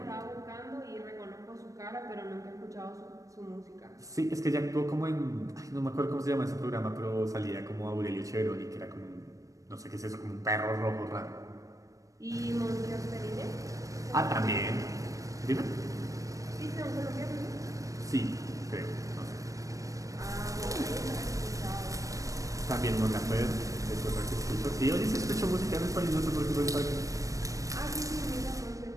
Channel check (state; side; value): late; left; 0.16 ms